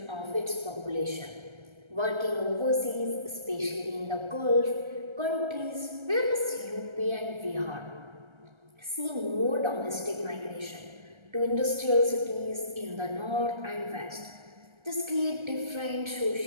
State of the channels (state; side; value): late; left; 1.3 ms